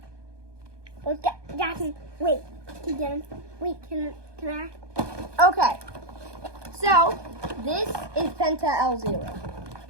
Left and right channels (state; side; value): late; left; 1.2 ms